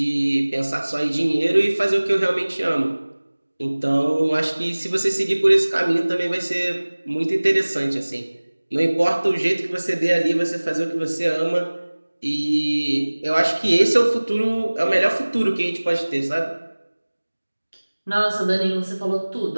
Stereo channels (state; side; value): inverted; both; correlation -1.00